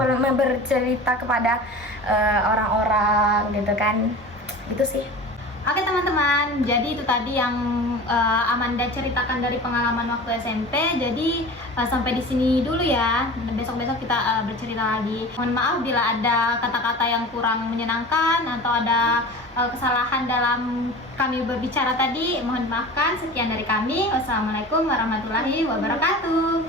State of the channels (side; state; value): both; normal; correlation 0.36